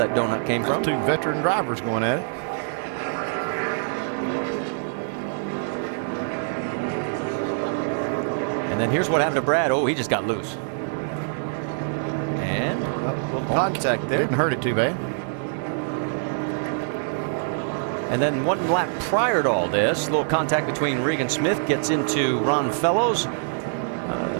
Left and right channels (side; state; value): left; silent; digital silence